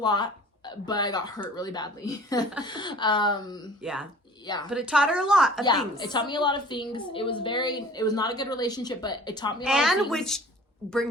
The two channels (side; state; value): both; normal; correlation 0.46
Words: but I got hurt really badly. Yeah. Yeah. But it taught her a lot of things. It taught me a lot of things. It was not a good relationship, but it taught me a lot of things. And which